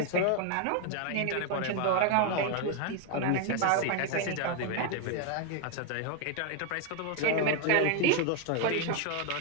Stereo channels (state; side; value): different; both; correlation 0.00